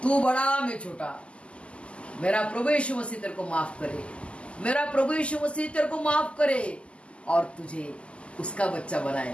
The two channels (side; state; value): right; late; 0.055 ms